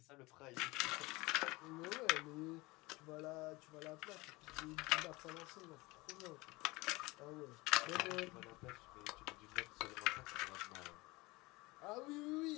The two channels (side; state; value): right; quieter; 22.6 dB